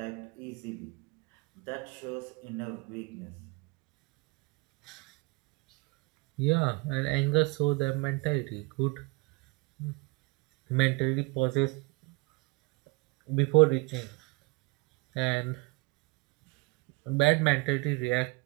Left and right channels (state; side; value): quieter; left; 26.6 dB